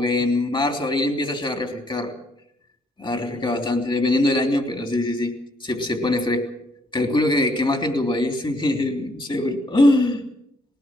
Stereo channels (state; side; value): normal; both; correlation 0.68